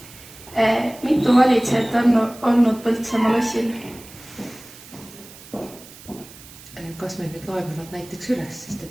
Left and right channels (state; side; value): noise; right; hiss, 19 dB below the sound